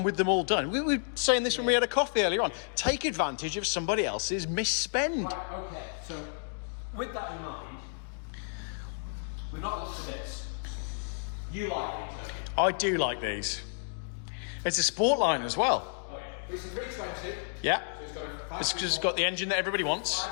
with them all done. We were saying this when we had a coffee earlier on. Take advantage of somebody else's misspend. Right, okay. So, with that in mind, we're not looked at this. You like these, don't you? I do like these. It's a Sportline as well. Oh, yeah. It's a 320. Yeah. So it's got a It's 5 because it's got the engine that everybody wants.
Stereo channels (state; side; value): silent; right; digital silence